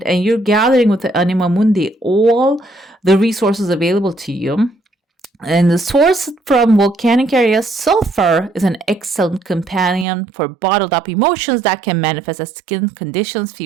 and you're gathering with the Anima Mundi all the resources available to you. And the source from volcanic areas, sulfur is an excellent companion for bottled up emotions that can manifest as skin conditions,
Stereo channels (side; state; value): left; drops out; at 10.1 s